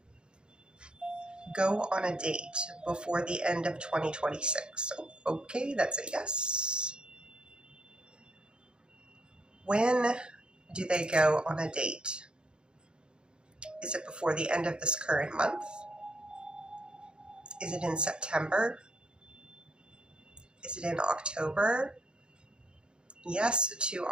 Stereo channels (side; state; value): left; late; 0.051 ms